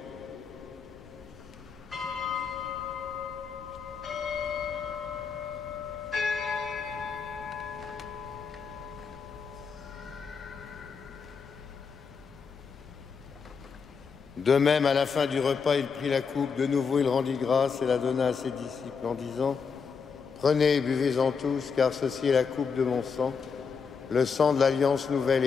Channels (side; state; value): right; quieter; 5.7 dB